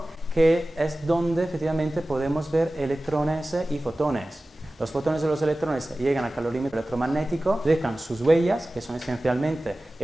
que es donde efectivamente podemos ver electrones y fotones. Los fotones y los electrones llegan al calorímetro electromagnético, dejan sus huellas, que son esencialmente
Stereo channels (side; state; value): both; normal; correlation 0.97